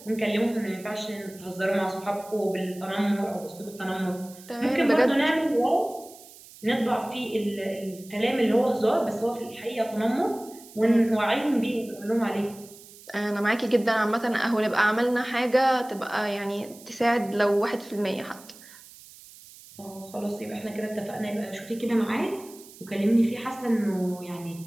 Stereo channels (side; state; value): right; noise; hiss, 20 dB below the sound